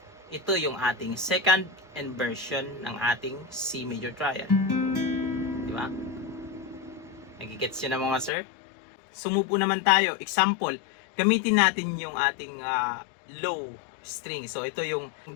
ito yung ating second inversion ng ating C major triad. Di ba? Nagigets yun na mga sir? Sumupo naman tayo. Example, gamitin natin yung ating low string. So, ito yung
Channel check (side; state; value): right; drops out; at 8.3 s